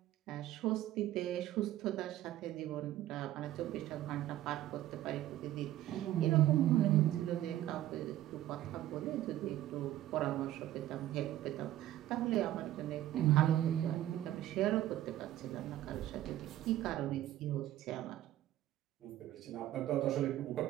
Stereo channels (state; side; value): quieter; left; 13.7 dB